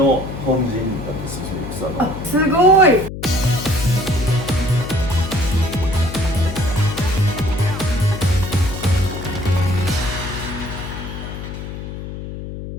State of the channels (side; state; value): left; noise; hum, 9 dB below the sound